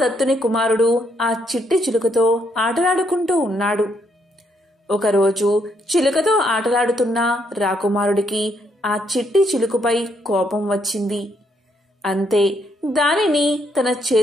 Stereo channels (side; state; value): both; normal; correlation 0.74